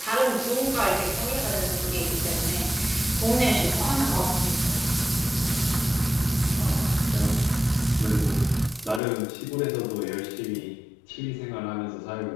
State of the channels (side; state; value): right; drops out; at 9.0 s